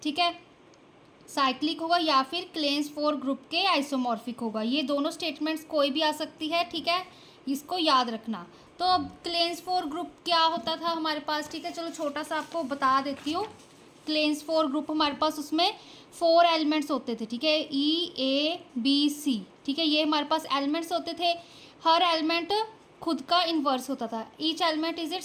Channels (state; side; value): identical; both; correlation 1.00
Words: ठीक है, साइक्लिक होगा या फिर क्लेन्स 4 ग्रुप के आइसोमॉर्फिक होगा। ये दोनों स्टेटमेंट्स कोई भी आ सकती है, ठीक है, इसको याद रखना। तो अब क्लेन्स 4 ग्रुप क्या होता था हमारे पास, ठीक है, चलो छोटा सा आपको बता देती हूँ। क्लेन्स 4 ग्रुप हमारे पास उसमें 4 एलिमेंट्स होते थे, ठीक है, E A B C, ठीक है, ये हमारे पास एलिमेंट्स होते थे। हर एलिमेंट खुद का इन्वर्स होता था, each element is